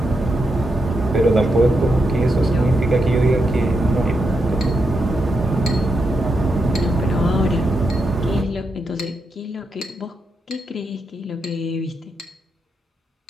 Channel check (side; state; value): both; normal; correlation 0.84